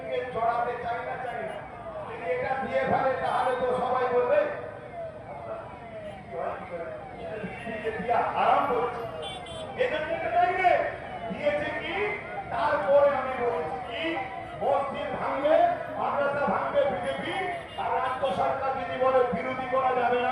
জড়াতে চাই না। যদি এটা দিয়ে ফেলে তাহলে তো সবাই বলবে আরাম করছে। এজন্য এটা দেয়নি। দিয়েছে কি? তারপরে আমি বলেছি কি, মসজিদ ভাঙবে, মাদ্রাসা ভাঙবে বিজেপি, আর রাজ্য সরকার যদি বলে বিরোধী করা যাবে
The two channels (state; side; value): identical; both; correlation 1.00